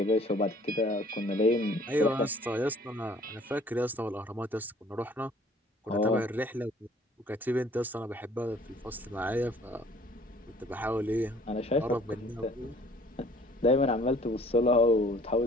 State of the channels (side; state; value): both; normal; correlation 0.55